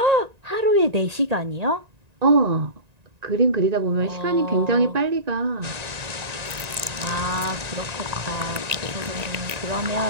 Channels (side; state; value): left; late; 1.9 ms